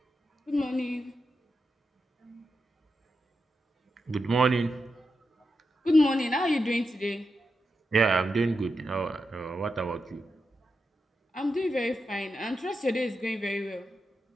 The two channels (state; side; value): normal; both; correlation 0.87